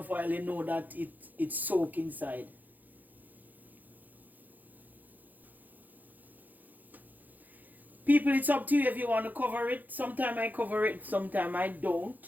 oil, you know that it's soaked inside. People, it's up to you if you want to cover it. Sometimes I cover it, sometimes I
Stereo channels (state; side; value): late; left; 0.083 ms